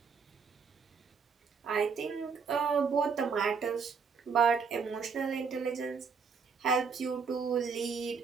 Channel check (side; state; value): left; quieter; 5.6 dB